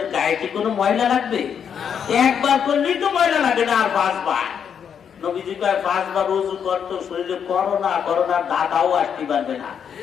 গায়ে কি কোনো ময়লা লাগবে? একবার করলেই তো ময়লা লাগে না, আর 5 বার। নবীজি কয় 5 বার ওযু করতো, শরীরে করোনা করোনার দাদাও আসতে পারবে না।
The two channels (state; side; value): quieter; right; 7.7 dB